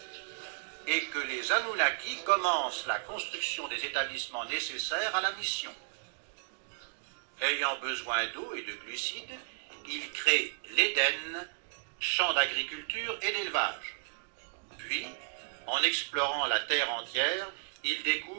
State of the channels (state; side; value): silent; left; digital silence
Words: et que les Anunnaki commencent la construction des établissements nécessaires à la mission. Ayant besoin d'eau et de glucides, ils créent l'Éden, champ d'agriculture et d'élevage. Puis, en explorant la terre entière, ils